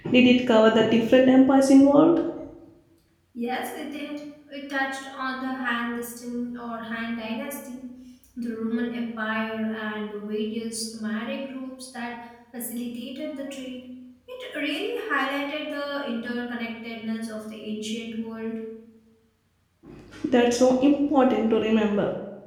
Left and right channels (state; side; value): identical; both; correlation 1.00